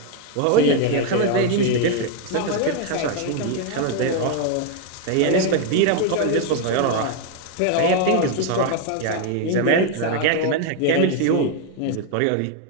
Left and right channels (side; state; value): both; different; correlation 0.01